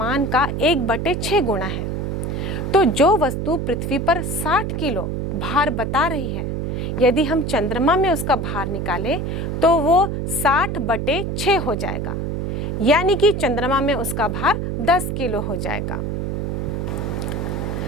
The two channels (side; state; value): right; noise; hum, 2 dB below the sound